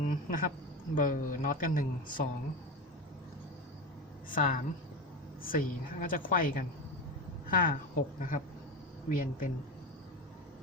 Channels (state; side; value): normal; both; correlation 0.21